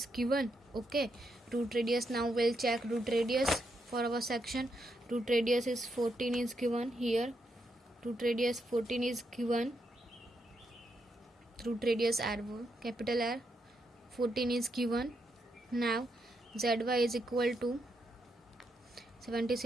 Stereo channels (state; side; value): normal; both; correlation 0.81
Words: given. Okay, root radius, now we'll check root radius for our section. Root radius is 14 is given here. Root radius 14 is given. Root radius R, capital R, 14 is given. Now ZY is equal to